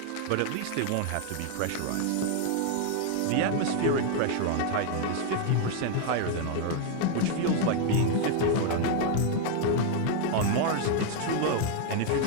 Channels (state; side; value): different; both; correlation 0.00